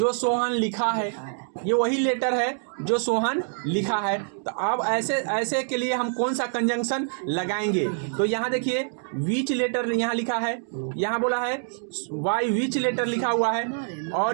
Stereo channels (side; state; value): left; silent; digital silence